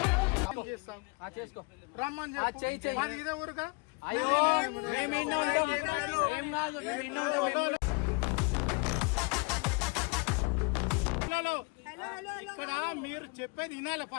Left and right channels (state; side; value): quieter; right; 30.2 dB